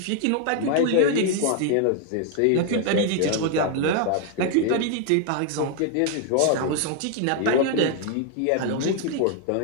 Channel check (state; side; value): different; both; correlation 0.00